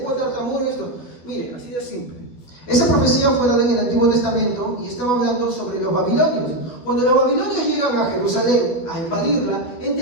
tartamuda esto. Mire, así de simple. Esa profecía fue dada en el Antiguo Testamento y estaba hablando sobre los babilonios. Cuando los babilonios llegan a Jerusalén a invadirla,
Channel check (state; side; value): late; right; 12 ms